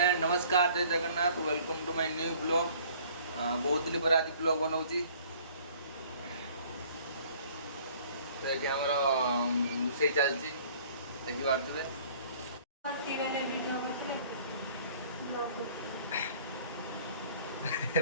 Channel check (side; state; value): both; inverted; correlation -0.54